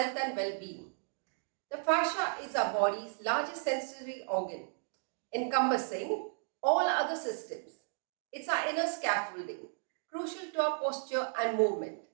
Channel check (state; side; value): silent; left; digital silence